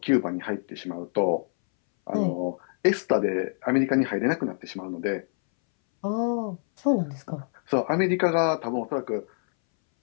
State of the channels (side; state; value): right; silent; 61 dB below the other